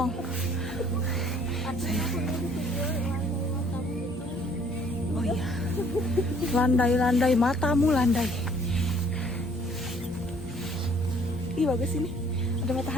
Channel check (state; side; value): normal; both; correlation 0.60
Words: Oh iya, landai-landai, matamu landai. Ih bagus ini, ada